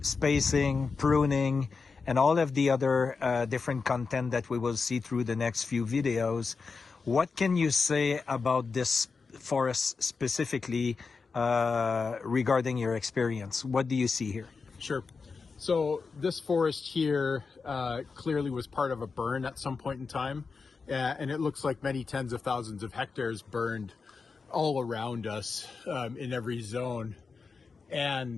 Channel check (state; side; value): quieter; right; 4.8 dB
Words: pruning, and all of the other different content that we will see through the next few videos, what can you say about this forest specifically regarding your experience? What do you see here? Sure. So this forest here clearly was part of a burn at some point in time, and it looks like many tens of thousands of hectares burned all around us in every zone,